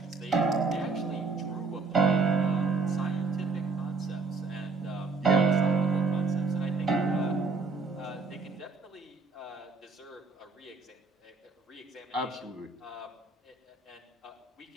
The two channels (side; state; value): left; quieter; 4.1 dB